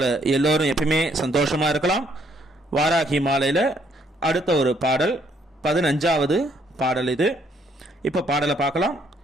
எல்லோரும் எப்பயுமே சந்தோஷமாக இருக்கலாம். வாராகி மாலையில் அடுத்த ஒரு பாடல் 15வது பாடல் இது. இப்போ பாடலை பார்க்கலாம்.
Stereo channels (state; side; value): normal; both; correlation 0.69